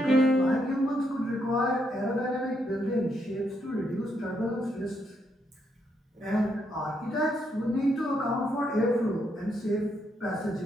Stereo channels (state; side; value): normal; both; correlation 0.77